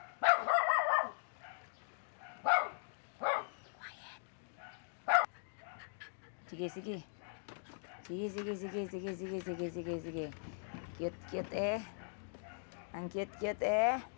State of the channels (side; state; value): right; silent; digital silence